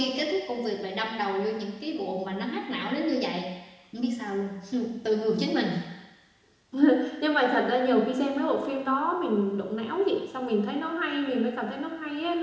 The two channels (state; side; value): identical; both; correlation 1.00